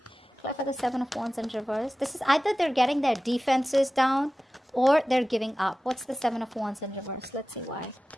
Clarify the Seven of Wands in reverse. This is either they're getting their defenses down or they're giving up. What's the Seven of Wands in reverse? Let's see why.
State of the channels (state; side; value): normal; both; correlation 0.96